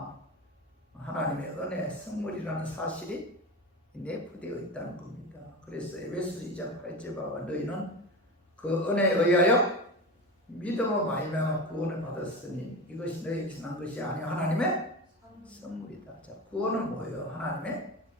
하나님의 은혜, 선물이라는 사실이 내포되어 있다는 겁니다. 그래서 에베소 2장 8절 봐 너희는 그 은혜에 의하여 믿음으로 말미암아 구원을 받았으니 이것이 너희에게서 난 것이 아니요 하나님의 선물이다. 자, 구원은 뭐예요? 하나님의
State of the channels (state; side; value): normal; both; correlation 0.26